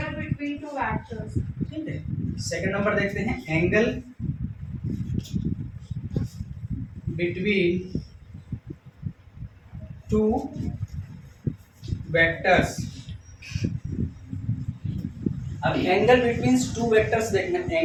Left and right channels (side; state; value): both; identical; correlation 1.00